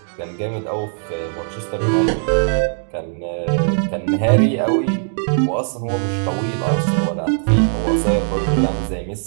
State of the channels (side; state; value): left; silent; digital silence